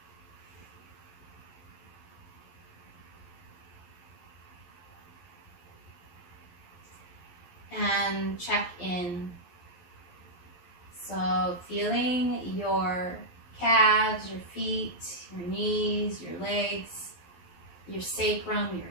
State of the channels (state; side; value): late; right; 11 ms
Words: And check in. So feeling your calves, your feet, your knees, your legs, your sacrum,